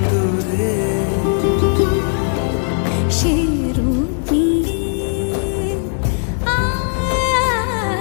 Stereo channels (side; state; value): right; silent; digital silence